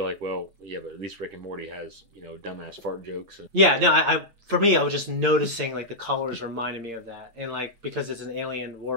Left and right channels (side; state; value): left; late; 8.2 ms